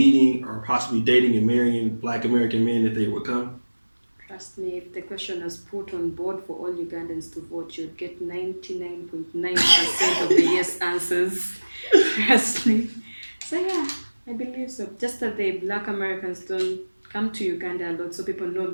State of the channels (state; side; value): inverted; both; correlation -1.00